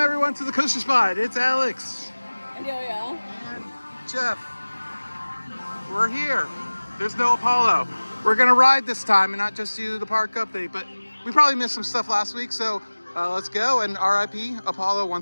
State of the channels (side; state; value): both; inverted; correlation -1.00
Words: everyone to the Coaster Spot. It's Alex And Yo-Yo. and Jeff. We're here. There's no Apollo. We're gonna ride this time and not just do the park update, but we probably missed some stuff last week, so let's go and RIP Apollo